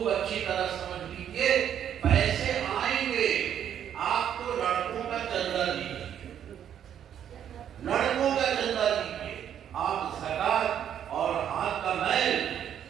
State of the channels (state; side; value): quieter; left; 9.6 dB